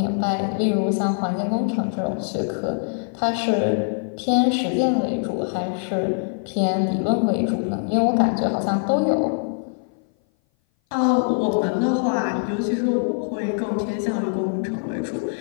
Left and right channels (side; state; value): right; silent; 58 dB below the other